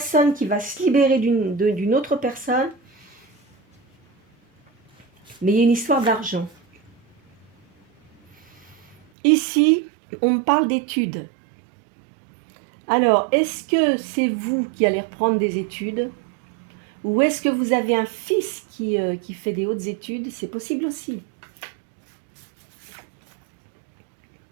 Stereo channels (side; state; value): left; drops out; at 9.0 s